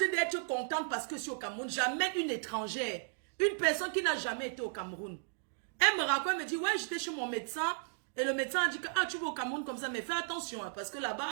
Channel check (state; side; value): silent; left; digital silence